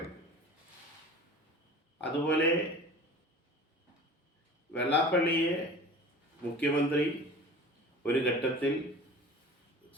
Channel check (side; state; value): both; normal; correlation 0.40